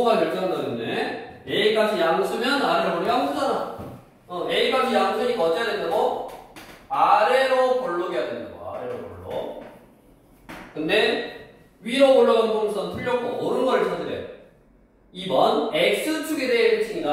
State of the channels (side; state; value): both; identical; correlation 1.00